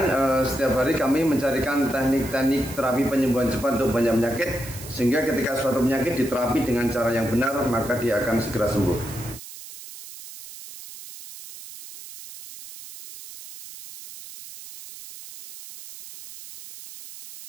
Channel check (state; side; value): noise; right; hiss, 14 dB below the sound